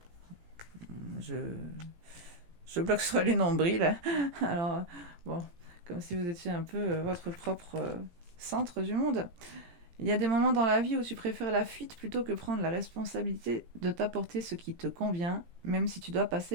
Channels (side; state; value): left; late; 17 ms